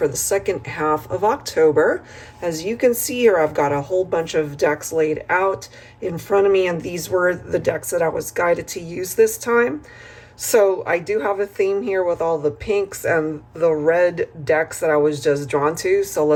the second half of October. As you can see here, I've got a whole bunch of decks laid out in front of me, and these were the decks that I was guided to use this time. So I do have a theme here with all the pinks and the red decks that I was just drawn to. So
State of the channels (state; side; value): identical; both; correlation 1.00